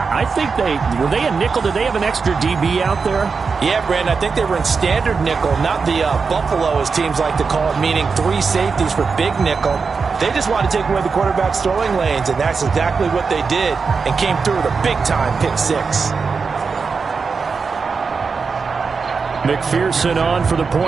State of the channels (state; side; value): quieter; left; 5.1 dB